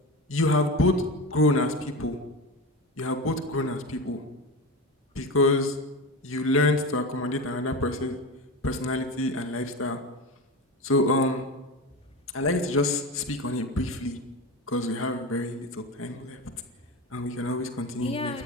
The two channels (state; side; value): normal; both; correlation 0.24